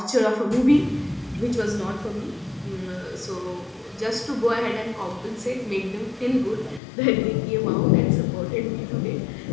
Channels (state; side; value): drops out; right; at 6.8 s